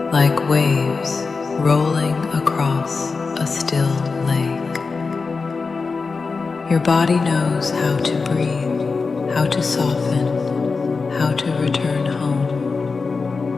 like waves rolling across a still lake. Your body knows how to breathe, how to soften, how to return home.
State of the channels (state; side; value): quieter; right; 4.5 dB